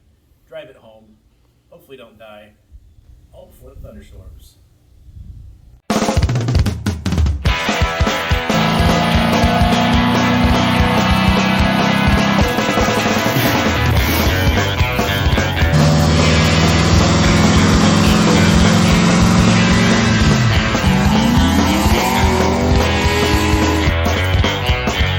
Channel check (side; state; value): both; identical; correlation 1.00